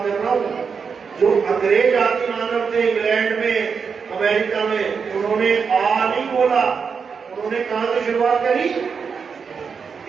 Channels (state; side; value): quieter; left; 5.9 dB